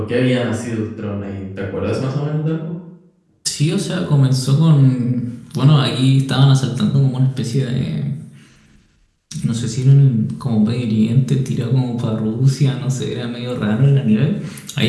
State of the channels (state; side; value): identical; both; correlation 1.00